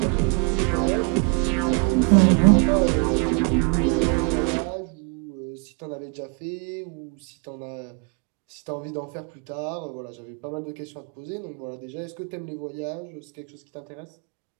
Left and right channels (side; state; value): left; quieter; 34.2 dB